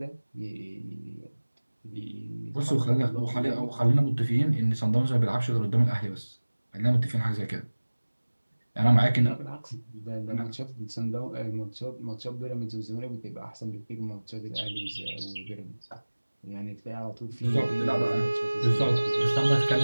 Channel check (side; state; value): both; inverted; correlation -1.00